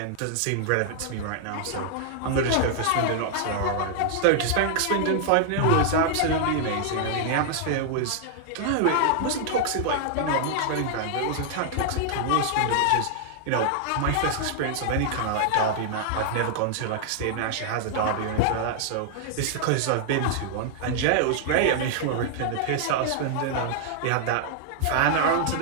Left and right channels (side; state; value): both; different; correlation -0.01